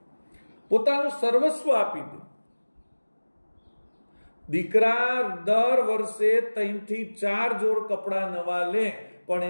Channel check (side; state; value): both; inverted; correlation -1.00